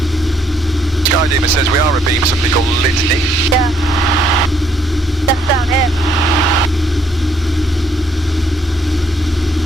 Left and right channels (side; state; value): both; normal; correlation 0.69